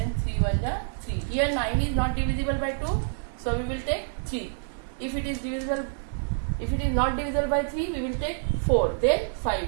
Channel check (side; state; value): left; silent; digital silence